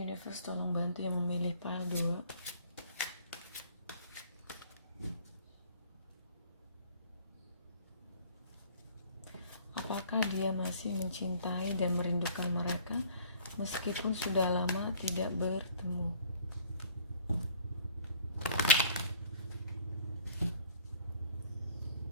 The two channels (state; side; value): inverted; both; correlation -0.53